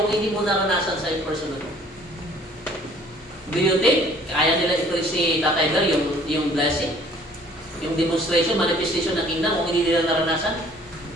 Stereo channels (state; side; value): normal; both; correlation 0.55